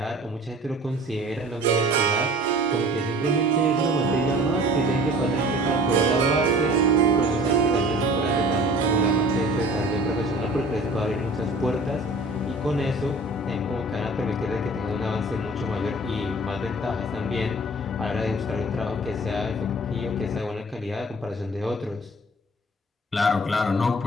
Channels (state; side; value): normal; both; correlation 0.46